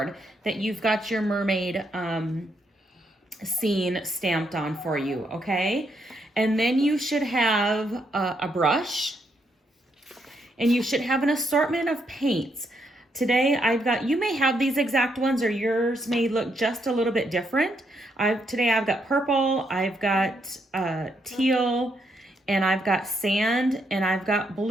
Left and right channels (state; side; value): normal; both; correlation 0.77